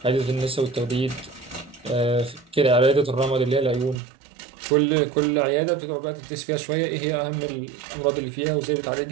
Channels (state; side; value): drops out; left; at 4.0 s